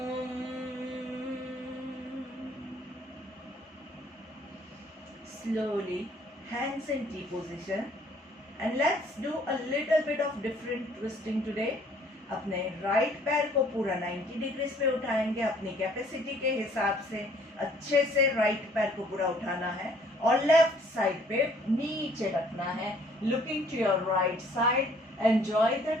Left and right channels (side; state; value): both; normal; correlation 0.60